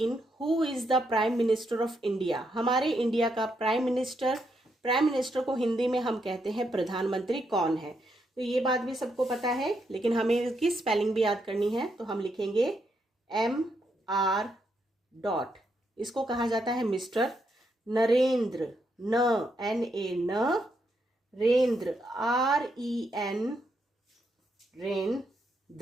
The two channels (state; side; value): normal; both; correlation 0.79